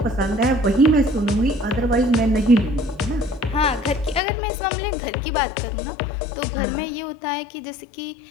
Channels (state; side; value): drops out; right; at 4.2 s